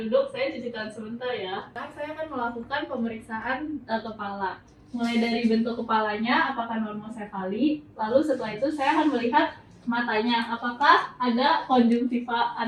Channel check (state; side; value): identical; both; correlation 1.00